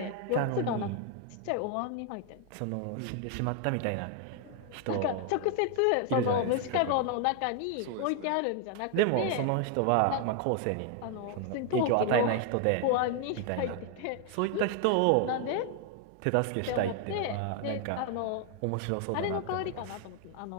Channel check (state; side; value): different; both; correlation 0.00